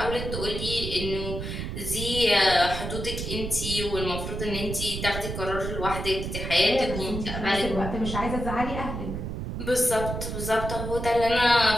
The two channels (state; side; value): noise; right; rumble, 5 dB below the sound